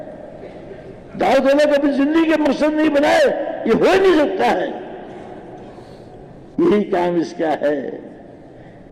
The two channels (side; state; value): both; identical; correlation 1.00